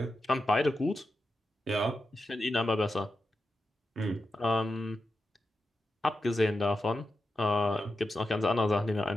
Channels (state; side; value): normal; both; correlation 0.89